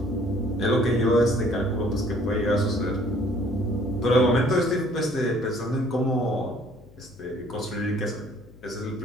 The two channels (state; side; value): noise; left; hum, 23 dB below the sound